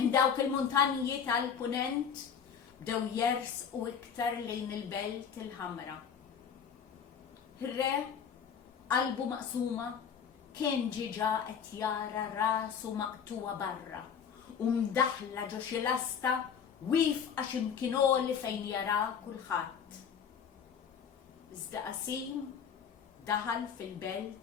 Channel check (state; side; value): quieter; right; 7.3 dB